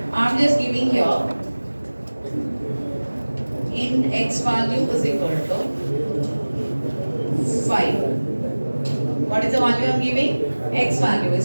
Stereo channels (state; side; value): inverted; both; correlation -1.00